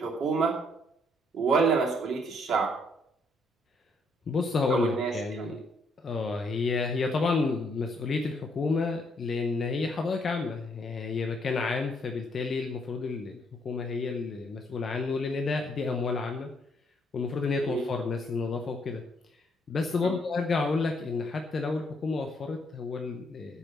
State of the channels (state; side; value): normal; both; correlation 0.70